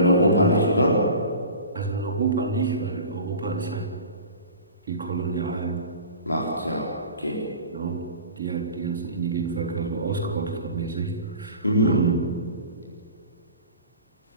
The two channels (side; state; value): both; inverted; correlation -0.39